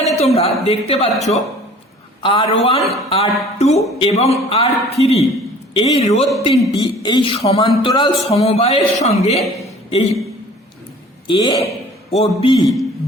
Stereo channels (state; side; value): normal; both; correlation 0.49